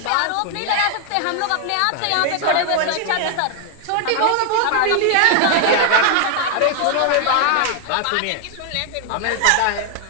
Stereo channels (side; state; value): both; different; correlation 0.00